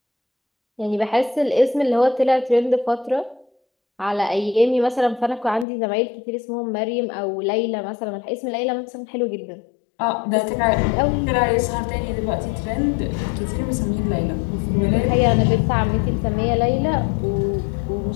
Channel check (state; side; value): drops out; right; at 5.7 s